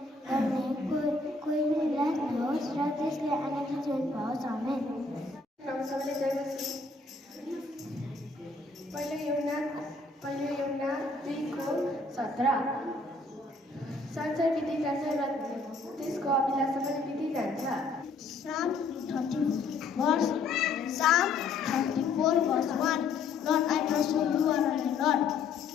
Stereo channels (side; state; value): right; quieter; 3.8 dB